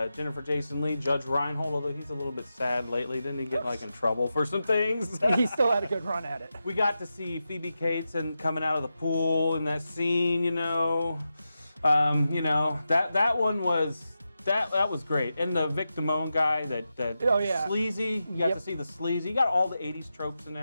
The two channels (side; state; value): both; inverted; correlation -0.90